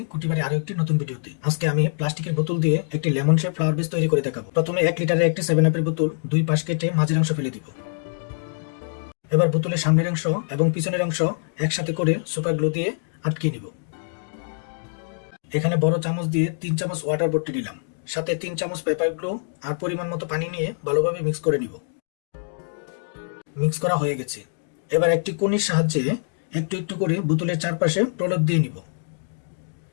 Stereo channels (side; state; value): right; silent; digital silence